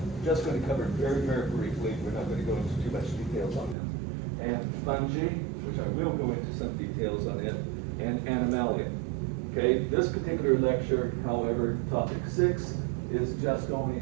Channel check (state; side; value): drops out; left; at 3.8 s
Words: just going to cover very, very briefly. We're not going to go into too much details on them. And fungi, which I will go into some details on it, and animalia. Okay, this particular lecture, however, topic 6 is just only